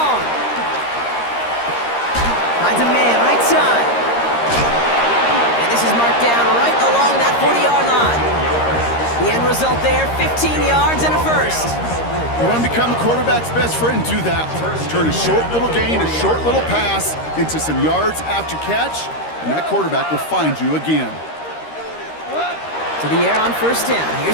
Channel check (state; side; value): late; right; 13 ms